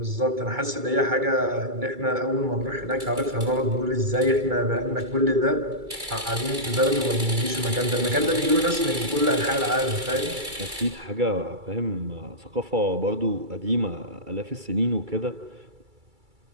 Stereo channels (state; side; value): late; left; 2.3 ms